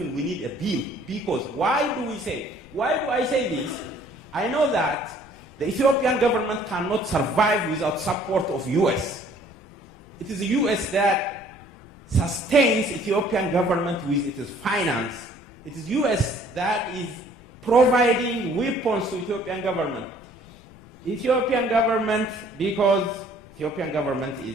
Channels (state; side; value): noise; left; rumble, 24 dB below the sound